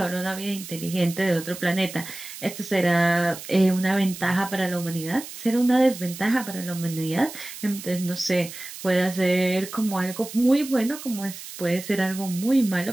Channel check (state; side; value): noise; right; hiss, 12 dB below the sound